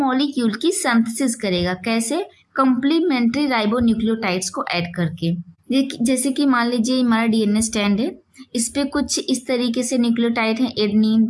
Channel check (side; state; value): both; identical; correlation 1.00